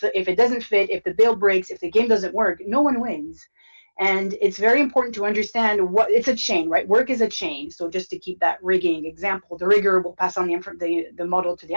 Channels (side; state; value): both; inverted; correlation -1.00